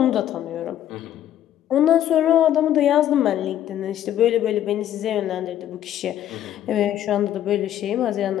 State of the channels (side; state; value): right; quieter; 11.5 dB